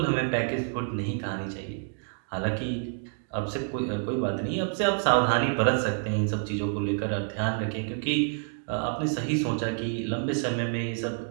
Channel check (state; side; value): silent; left; 59 dB below the other